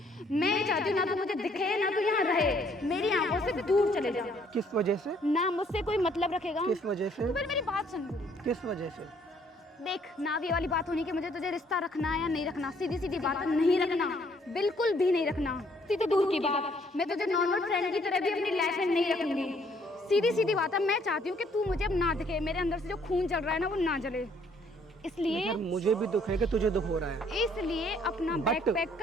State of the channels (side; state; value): both; normal; correlation 0.64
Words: मैं चाहती हूँ ना तू मुझे दिखे ना तू यहाँ रहे, मेरी आंखों से दूर चले जा। किस वजह से? ना मुझसे कोई मतलब रखेगा। किस वजह से? तू पहले मेरी बात सुन। किस वजह से? देख, ना ये वाली बात होनी कि मुझे तुझे रिश्ता रखना है या नहीं रखना। सीधी सीधी बात है, नहीं रखना, बिल्कुल भी नहीं रखना। सीधी दूर की बात, मैं तुझे नॉर्मल फ्रेंड की तरह भी अपनी लाइफ में नहीं रखूंगी। सीधी सीधी बात है, मैं चाहती हूँ कि तू मुझे अब ना दिखे, मेरे अंदर से जो खून जल रहा है ना वो ना जले। इसलिए मुझे भी दुख है कि तुझे दुख हो रहा है, इसलिए अपना बैग पैक